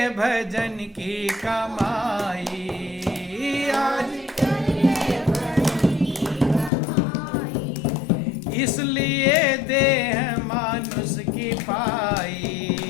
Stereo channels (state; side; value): drops out; right; at 6.7 s